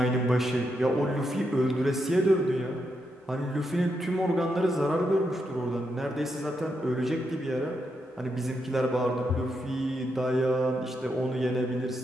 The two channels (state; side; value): normal; both; correlation 0.82